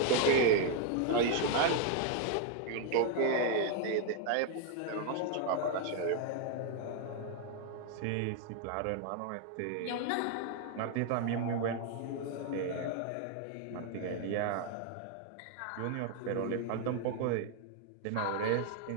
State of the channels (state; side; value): different; both; correlation 0.00